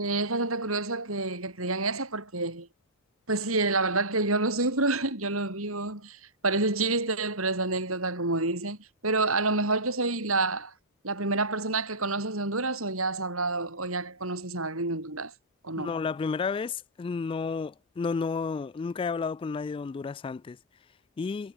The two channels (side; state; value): both; normal; correlation -0.16